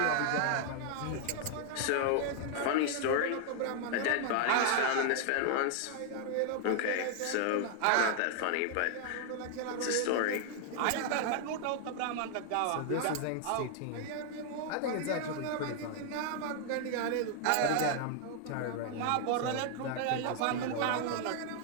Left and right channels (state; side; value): different; both; correlation 0.00